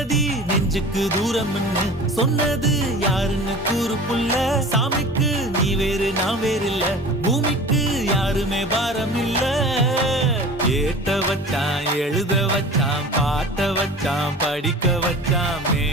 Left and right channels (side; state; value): both; normal; correlation 0.39